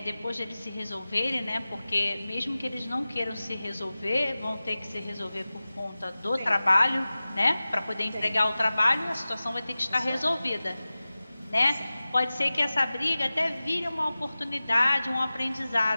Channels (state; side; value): inverted; both; correlation -0.96